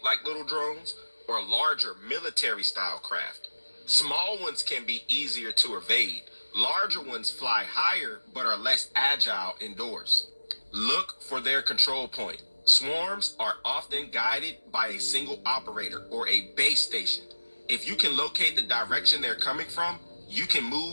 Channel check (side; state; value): both; inverted; correlation -1.00